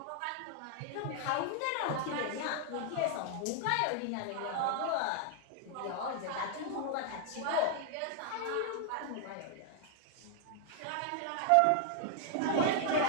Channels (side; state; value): both; different; correlation 0.00